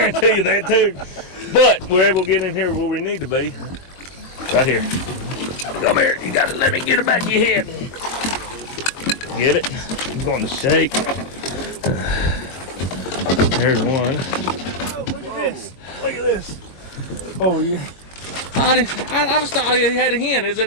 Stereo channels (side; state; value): right; late; 22 ms